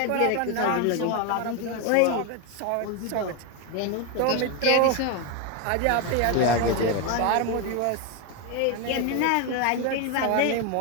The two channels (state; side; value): different; both; correlation 0.02